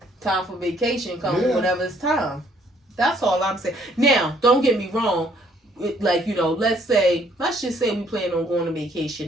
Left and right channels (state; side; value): normal; both; correlation 0.64